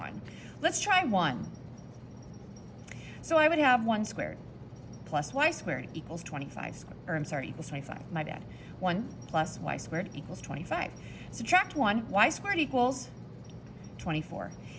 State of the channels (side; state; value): both; identical; correlation 1.00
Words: Let's try 1. So I would have 1 squared plus y squared equals 25, equals 25, my bad. 1 plus y squared equals 25. Subtract 1, y squared equals 24.